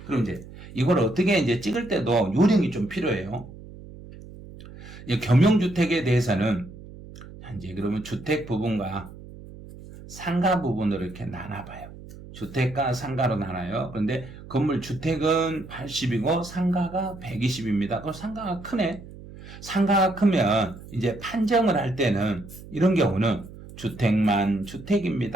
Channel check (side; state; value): right; noise; hum, 16 dB below the sound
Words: 그럼 이제 이걸 어떻게 이제 찍을 때도 요령이 좀 필요해요. 겸용주택에 대해서는 이제 그러면 주택 부분과 상가 부분으로 이렇게 나눠봐요. 주택과 상가로 나눠요. 그런데 건물 주택은 80이고 상가가 120입니다. 그럼 상가가 크네. 상가가 크면 이제 판정을 할 때는 이런 경우는 주택만